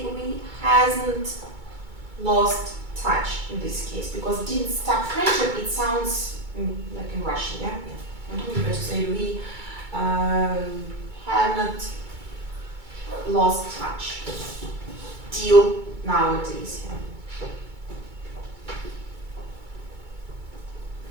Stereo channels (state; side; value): late; left; 2.2 ms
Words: we hasn't lost touch in this case, because didn't stop friendship, it sounds like in Russian, yeah? It's better to say we haven't lost touch till nowadays, yeah?